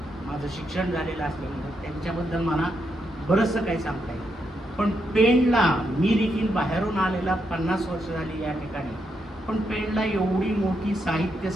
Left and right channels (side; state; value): both; normal; correlation 0.81